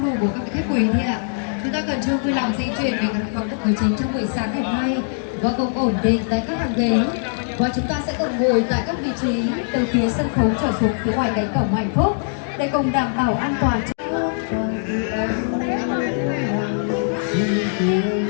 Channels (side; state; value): right; silent; digital silence